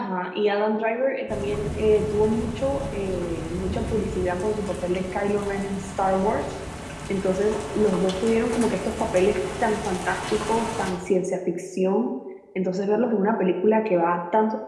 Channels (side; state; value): both; identical; correlation 1.00